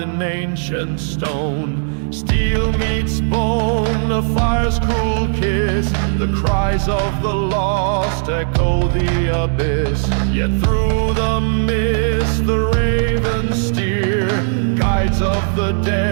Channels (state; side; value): silent; left; 68 dB below the other